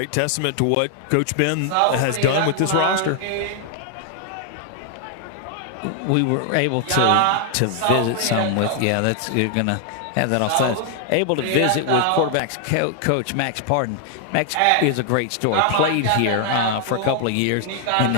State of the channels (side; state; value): both; different; correlation 0.00